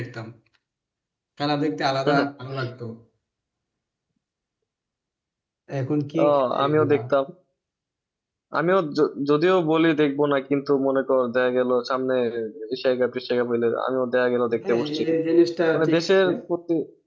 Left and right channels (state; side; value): identical; both; correlation 1.00